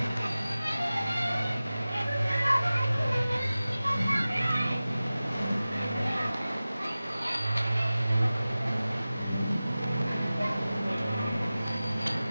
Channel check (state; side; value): inverted; both; correlation -0.97